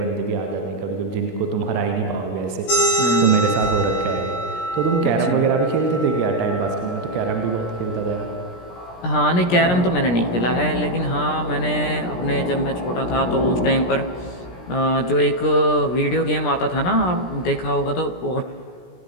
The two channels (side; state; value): right; late; 17 ms